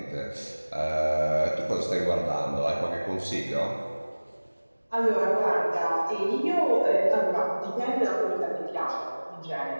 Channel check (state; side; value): inverted; both; correlation -1.00